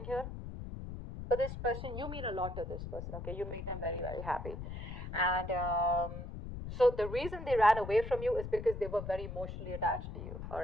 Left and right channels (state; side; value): noise; left; rumble, 8 dB below the sound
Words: here. But this person, you mean a lot to this person, okay? You make them very, very happy. And so the reason they ran away from you is because they were very emotionally attached to you, all